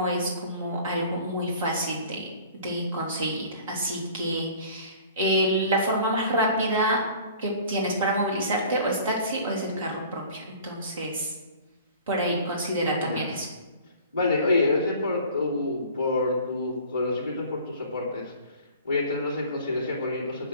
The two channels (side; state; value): both; inverted; correlation -0.47